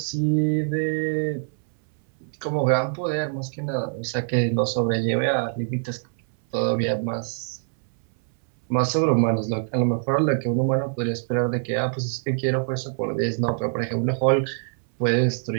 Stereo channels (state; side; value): silent; left; 61 dB below the other